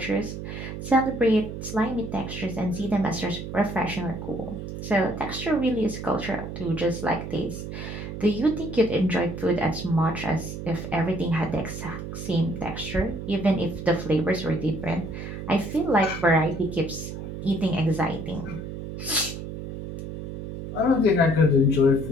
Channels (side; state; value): right; noise; hum, 8 dB below the sound